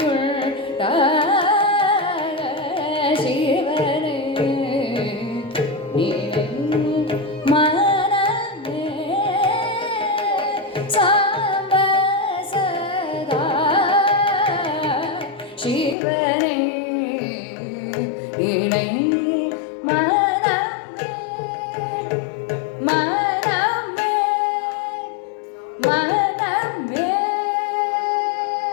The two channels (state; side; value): drops out; right; at 16.0 s